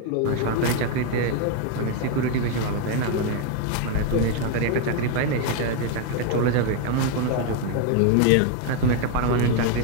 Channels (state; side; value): different; both; correlation 0.01